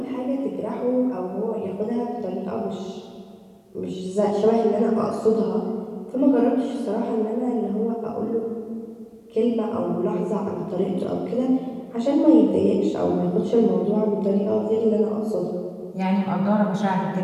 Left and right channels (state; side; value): identical; both; correlation 1.00